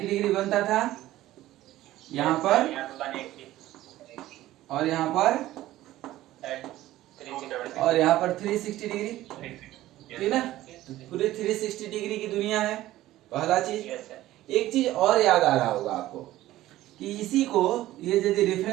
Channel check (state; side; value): quieter; left; 15.2 dB